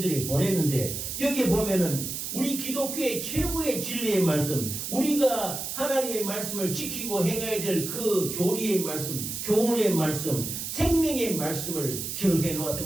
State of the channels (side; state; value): right; noise; hiss, 5 dB below the sound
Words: 보냈는데, 여기 보면은 우리 기독교의 최고의 진리의 말씀, 우리가 하나님의 말씀을 지키고 행해야 될 그 교리의 말씀, 교훈의 말씀, 생명의 말씀을 기록해